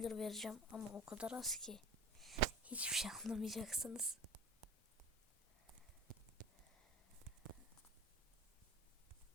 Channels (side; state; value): both; normal; correlation 0.38